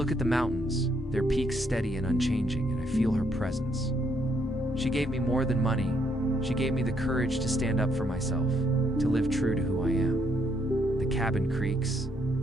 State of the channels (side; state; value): both; normal; correlation 0.73